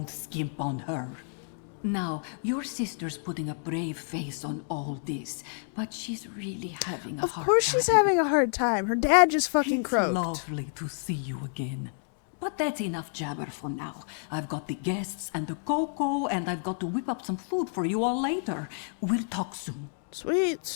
skimp on her. Now, your sister's putting a brave face on all this, but she's really having a hard time. Of course she's having a hard time. Her dad just fucking croaked. It's lovely to see you again. But that's enough jabber for now. I've got the guests and the cocoa, and I've got to whip up some food for you all later. We'll talk soon.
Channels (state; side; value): silent; right; 58 dB below the other